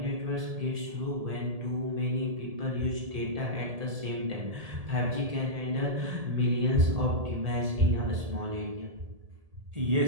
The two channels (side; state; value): left; late; 1.8 ms